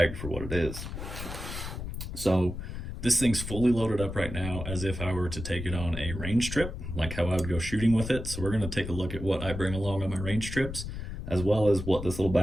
for what it is. So this thing's fully loaded up right now as if I were to take it on a range trip, like how I would go shooting with it. So we're going to take a look at what I bring along on my range trips, as well as what this little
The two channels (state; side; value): noise; left; rumble, 7 dB below the sound